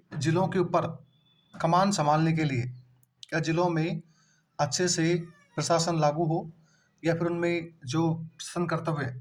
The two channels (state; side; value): identical; both; correlation 1.00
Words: जिलों के ऊपर कमान संभालने के लिए, या जिलों में अच्छे से प्रशासन लागू हो या फिर उनमें जो शासन कर्तव्य है